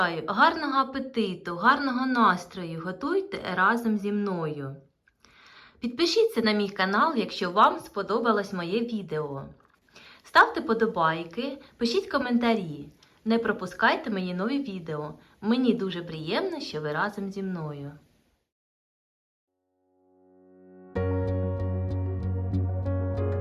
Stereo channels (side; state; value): both; identical; correlation 1.00